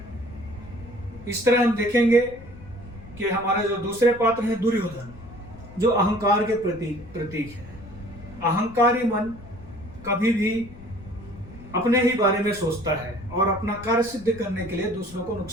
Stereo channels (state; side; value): noise; left; rumble, 18 dB below the sound